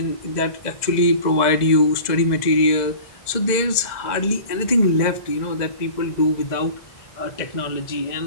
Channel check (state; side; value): late; right; 2.0 ms